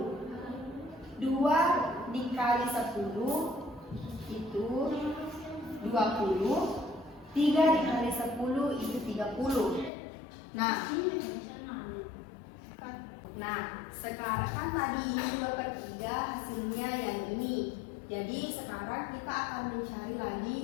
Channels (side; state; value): right; drops out; at 9.9 s